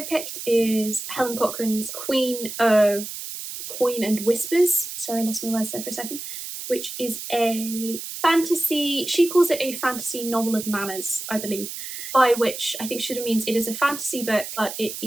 picked is Helen Cochrane's Queen of Coin and Whispers. Sorry, I lost my words there for a second. Which is a fantasy, she calls it a fantasy novel of manners, I believe, by which I think she means it is a fantasy book, but it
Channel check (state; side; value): noise; right; hiss, 8 dB below the sound